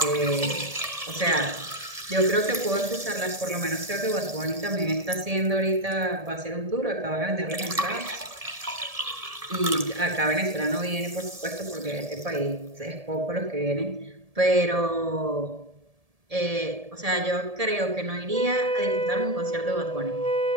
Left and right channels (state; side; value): late; left; 1.7 ms